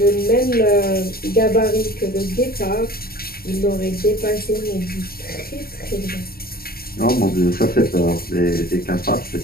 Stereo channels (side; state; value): right; late; 0.44 ms